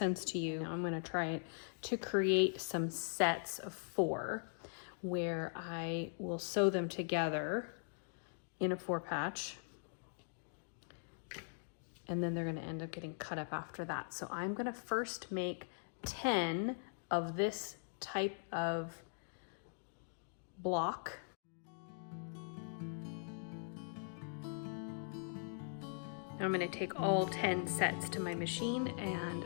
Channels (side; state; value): right; silent; digital silence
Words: to you. Now I'm going to try it to create some sets of 4 where I will sew them together in a 4-patch, and then they're going to end up getting cut up after that. So I'm going to first make 10 of this type of block. Now I'm going to take all 10 sets to my machine and